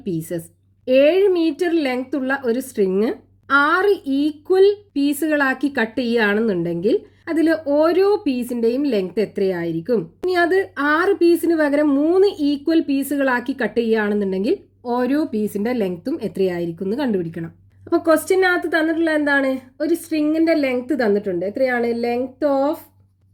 pieces? 7 metre length ഉള്ള ഒരു സ്ട്രിങ് 6 ഈക്വൽ പീസുകളാക്കി കട്ട് ചെയ്യുകയാണെന്നുണ്ടെങ്കിൽ അതിൽ ഓരോ പീസിൻ്റെയും ലെങ്ത് എത്രയായിരിക്കും? ഇനി അത് 6 പീസിന് പകരം 3 ഈക്വൽ പീസുകളാക്കി കട്ട് ചെയ്യുകയാണെന്നുണ്ടെങ്കിൽ ഓരോ പീസിൻ്റെ ലെങ്ത്തും എത്രയായിരിക്കും എന്ന് കണ്ടുപിടിക്കണം. അപ്പോൾ ക്വസ്റ്റ്യനകത്ത് തന്നിട്ടുള്ള എന്താണ്? ഒരു സ്ട്രിങ്ങിൻ്റെ ലെങ്ത് തന്നിട്ടുണ്ട്. എത്രയാണ്? Length of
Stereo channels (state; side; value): identical; both; correlation 1.00